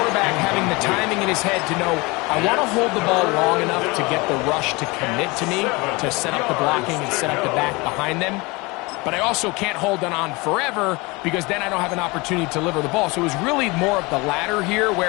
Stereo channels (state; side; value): quieter; right; 25.0 dB